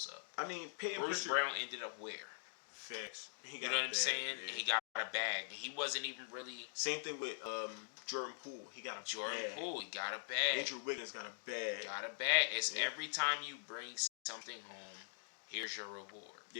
up. I mean, Peyton Bruce Pritchard, Brown ended up where? Facts. You know what I'm saying? Yeah. He got a bag. He wasn't even really. Same thing with Jordan Poole. He got a bag. Poole. He got a bag. Andrew Wiggins got a bag. It's every time you bring something home, here's your reward.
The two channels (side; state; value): right; silent; digital silence